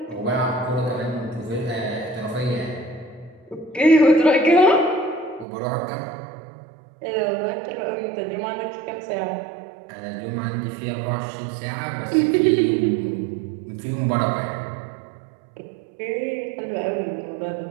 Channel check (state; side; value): drops out; left; at 5.5 s